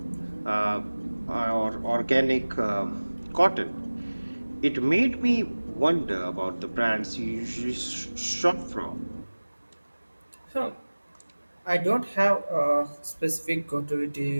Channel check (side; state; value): both; inverted; correlation -1.00